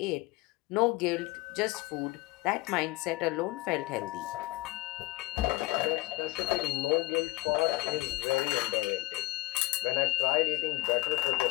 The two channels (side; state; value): right; quieter; 18.7 dB